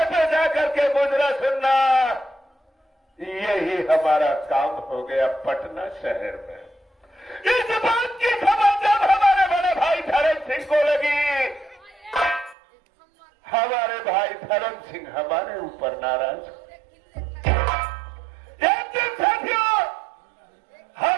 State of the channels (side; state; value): left; drops out; at 12.6 s